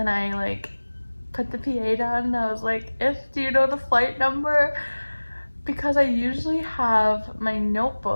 I like put the PA down and I was like, do you know the flight number? Because I usually have my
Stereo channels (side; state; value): both; inverted; correlation -1.00